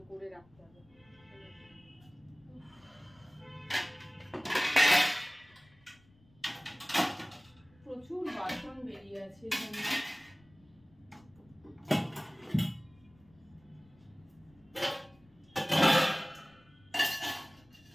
করে রাখতে হবে। প্রচুর বাসন বেরিয়ে আছে এখানে।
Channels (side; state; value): left; noise; rumble, 29 dB below the sound